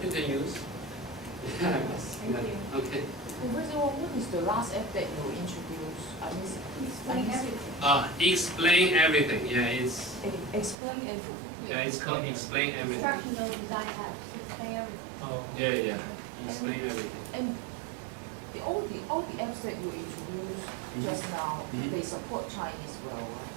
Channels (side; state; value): left; drops out; at 10.8 s